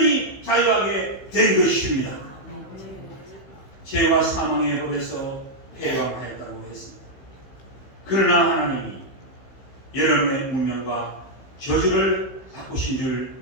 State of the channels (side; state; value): right; late; 15 ms